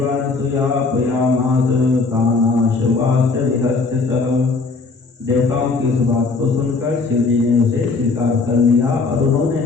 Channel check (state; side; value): quieter; right; 4.1 dB